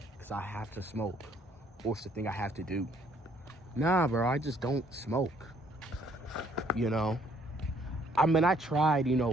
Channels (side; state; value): both; normal; correlation 0.64